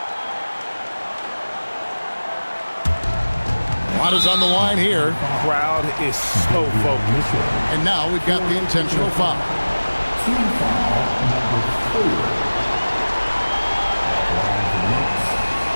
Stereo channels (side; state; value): both; inverted; correlation -1.00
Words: A lot is on the line here. Crowd is so focused. And now we've got the intentional foul. Team foul number 4.